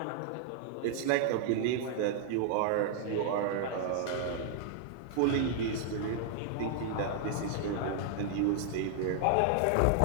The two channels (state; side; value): different; both; correlation -0.01